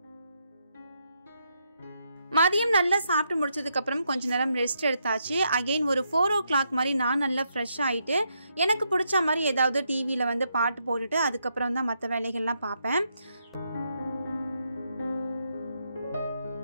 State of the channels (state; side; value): inverted; both; correlation -0.79